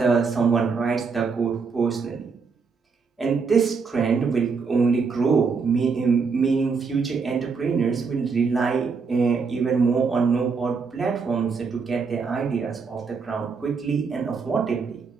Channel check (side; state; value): left; quieter; 5.1 dB